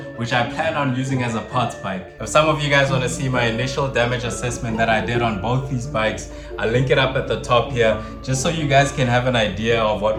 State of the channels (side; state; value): both; identical; correlation 1.00